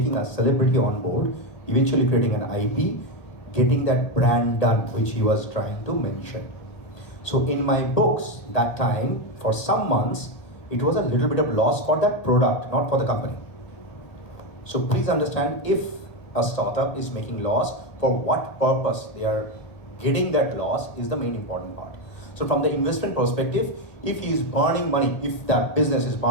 a celebrity on board, eventually creating an IP, getting that brand done, which he was trying to mention. So in my books, that time, for some months, it was a little bit of loss for that product, not for the company. So please understand, if a startup is making loss, for what purpose they are getting that loss is the main important part. So from the investment perspective, if he is burning money, if that business is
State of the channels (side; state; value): right; late; 1.8 ms